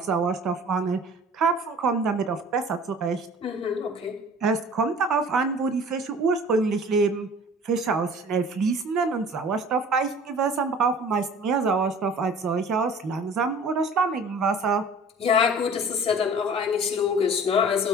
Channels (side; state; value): both; normal; correlation 0.45